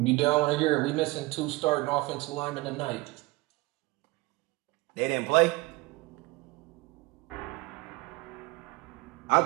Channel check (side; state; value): left; quieter; 22.4 dB